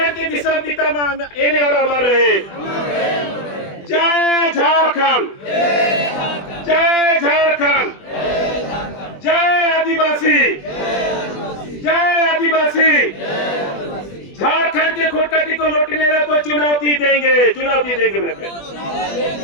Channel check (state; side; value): late; right; 20 ms